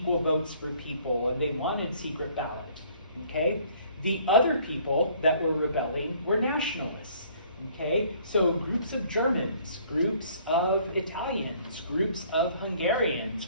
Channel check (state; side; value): inverted; both; correlation -0.58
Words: votes for people, and they wanted secret ballot, okay? The other people that were rebelling were nationalists, okay? So groups of Germans, groups of Italians, groups of Hungarians,